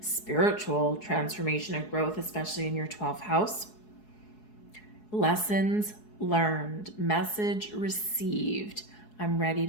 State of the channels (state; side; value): late; right; 4.7 ms